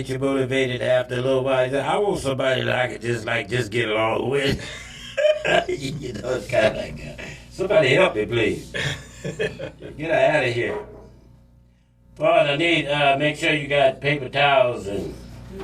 you motivated, after a little while, I want somebody that I can just get along with. You know, it's kind of like, somebody help me, please. Get her out of here. Paul, I need, make sure you got paper towels and...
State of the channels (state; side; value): identical; both; correlation 1.00